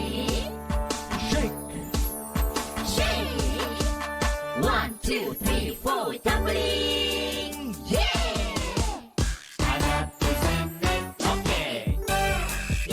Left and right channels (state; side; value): identical; both; correlation 1.00